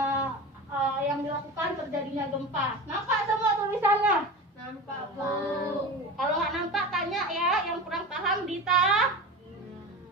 Yang dilakukan terjadinya gempa. Nampak semua tulisannya? Nampak, Bu. Kalau nggak nampak, tanya ya. Yang kurang paham, Dita.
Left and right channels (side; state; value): both; normal; correlation 0.29